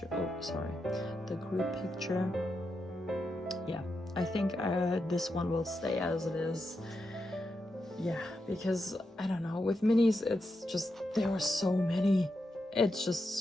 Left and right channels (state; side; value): normal; both; correlation 0.86